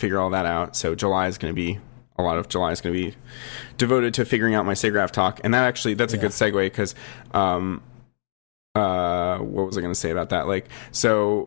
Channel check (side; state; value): right; silent; 63 dB below the other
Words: all that out. So July is going to be, a lot of July is going to be devoted to figuring out my SIGGRAPH talk. And that's a good segue, because what was I going to say about that? Like,